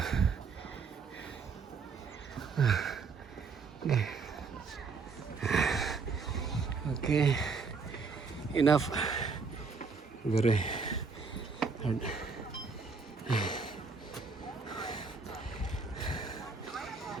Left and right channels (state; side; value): quieter; left; 4.9 dB